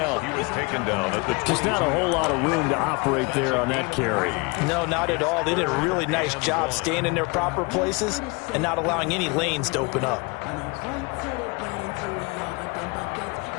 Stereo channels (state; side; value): quieter; right; 28.4 dB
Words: He was taken down at the Just not a whole lot of room to operate there on that carry. No, not at all. They did a really nice job staying in their proper places and not allowing any lanes to open up.